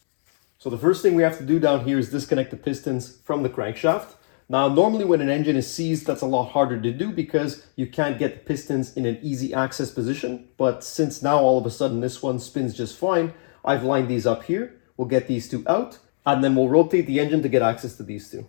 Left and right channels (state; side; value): silent; right; digital silence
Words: So the first thing we have to do down here is disconnect the pistons from the crankshaft. Now, normally when an engine is seized, that's a lot harder to do because you can't get the pistons in an easy access position. But since now all of a sudden this one spins just fine, I've lined these up here. We'll get these two out and then we'll rotate the engine to get access to these two.